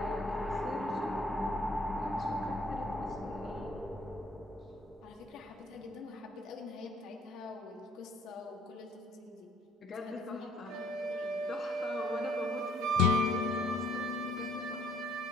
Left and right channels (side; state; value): both; normal; correlation 0.62